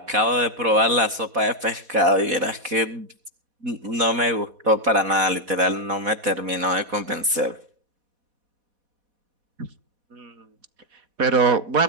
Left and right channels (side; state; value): left; late; 4.1 ms